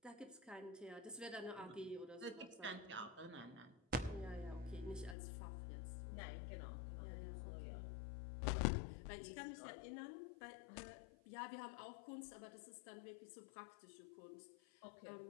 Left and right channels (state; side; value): drops out; right; at 5.2 s